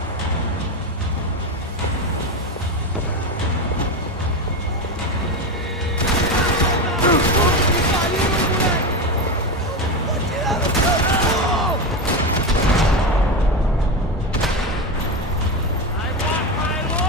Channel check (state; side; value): normal; both; correlation 0.17